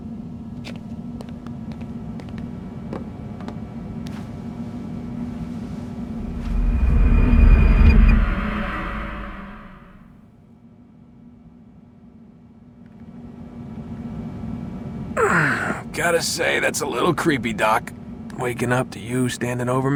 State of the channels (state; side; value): identical; both; correlation 1.00